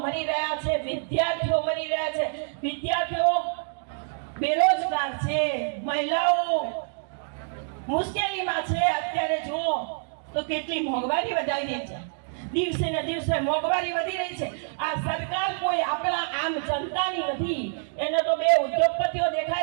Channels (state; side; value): silent; left; digital silence